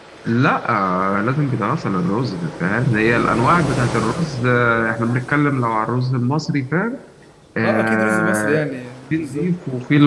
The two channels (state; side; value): identical; both; correlation 1.00